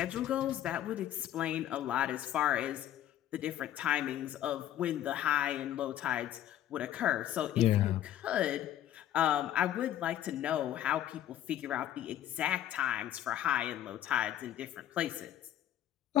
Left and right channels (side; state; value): right; quieter; 11.8 dB